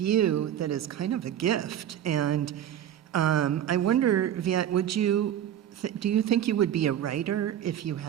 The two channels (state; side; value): quieter; left; 10.5 dB